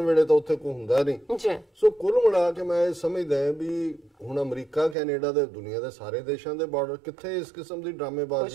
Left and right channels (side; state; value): left; drops out; at 5.0 s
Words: ਵੇਲੇ ਤਾਂ ਉੱਥੇ ਕੋਈ ਹੁੰਦਾ ਨਹੀਂ। ਸੋ ਕੁੱਲ ਮਿਲਾ ਕੇ ਮੈਂ ਇਹ ਸਮਝਦਾ ਵੀ ਹੁਣ ਅਮਰੀਕਾ ਕੈਨੇਡਾ ਦੇ ਦੁਨੀਆ ਦੇ ਸਾਰੇ ਦੇਸ਼ਾਂ ਦੇ ਬਾਰਡਰ ਕਿੱਥੇ ਇਸ ਕਿਸਮ ਦੀ